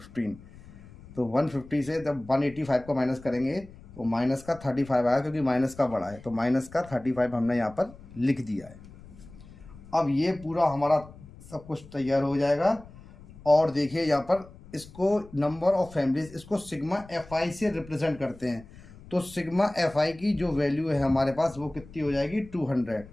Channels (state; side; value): noise; left; rumble, 20 dB below the sound